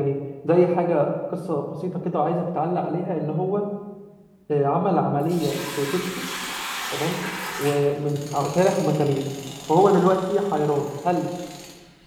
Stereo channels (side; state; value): both; identical; correlation 1.00